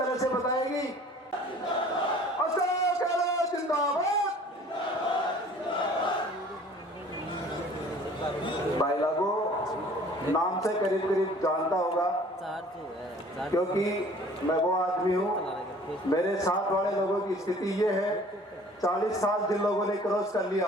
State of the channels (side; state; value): both; normal; correlation 0.50